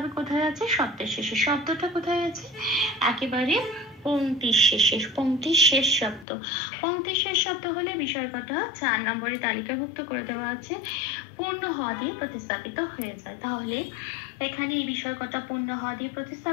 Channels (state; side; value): drops out; right; at 6.2 s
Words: কোথায় আছে? শব্দের শেষে। শব্দটা কোথায় আছে? একেবারে পংক্তির শেষে, পংক্তির শেষ শব্দ। পংক্তির শেষ শব্দ হলে বিসর্গটা 4 নম্বরে তালিকাভুক্ত করে দেওয়া আছে পূর্ণ হ দিয়ে প্রতিস্থাপিত হয়ে যায়। তাহলে এখানে এই বিসর্গটা পূর্ণ হ দিয়ে